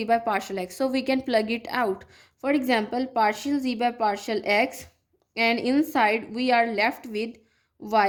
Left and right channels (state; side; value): identical; both; correlation 1.00